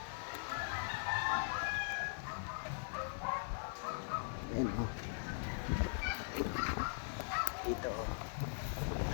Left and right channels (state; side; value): silent; right; digital silence